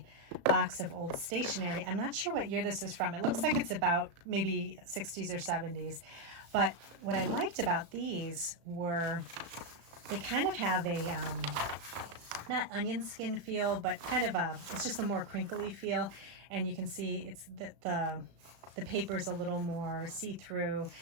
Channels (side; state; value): left; late; 36 ms